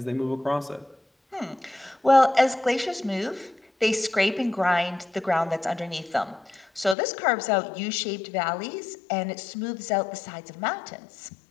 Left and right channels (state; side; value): drops out; right; at 7.0 s